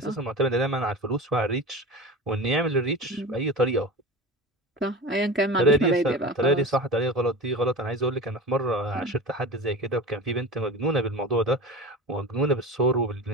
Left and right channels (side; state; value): both; normal; correlation 0.31